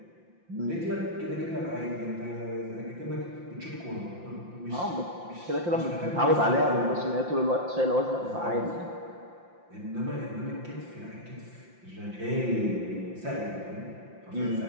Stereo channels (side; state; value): left; late; 5.8 ms